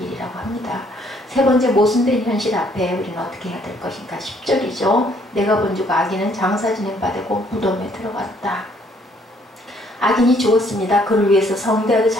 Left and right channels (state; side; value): normal; both; correlation 0.65